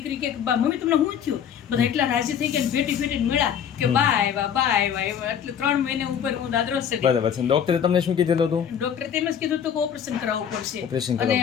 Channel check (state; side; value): quieter; right; 8.5 dB